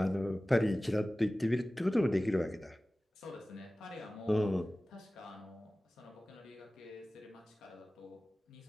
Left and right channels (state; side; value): normal; both; correlation 0.97